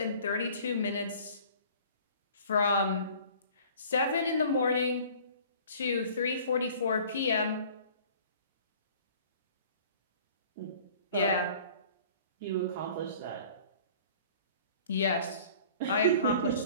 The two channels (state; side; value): inverted; both; correlation -0.49